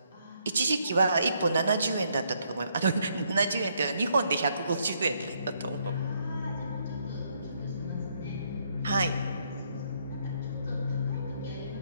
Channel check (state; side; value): inverted; both; correlation -0.72